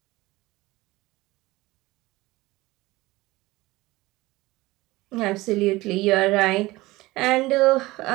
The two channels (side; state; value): left; quieter; 19.8 dB